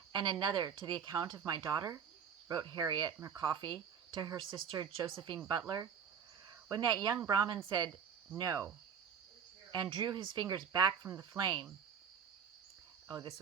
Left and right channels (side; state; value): left; quieter; 7.2 dB